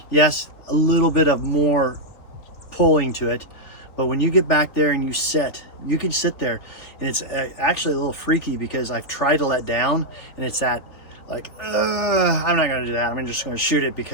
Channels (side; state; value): right; late; 3.5 ms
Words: Yes, a little bit of more pulling to it, but when you get back there and you can sit there, and it's actually a little freaky because I've tried to let down, and it's that like, I'm not gonna do that. I'm just gonna shoot it